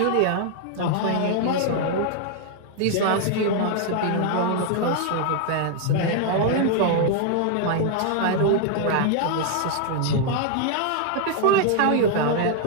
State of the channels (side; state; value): both; different; correlation 0.00